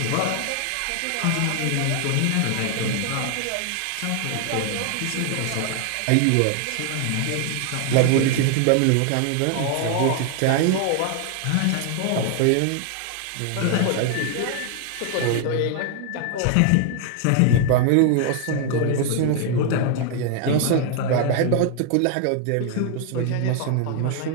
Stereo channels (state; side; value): different; both; correlation 0.00